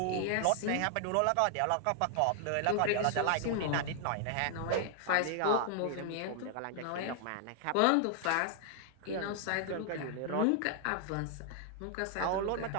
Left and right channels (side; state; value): both; different; correlation 0.00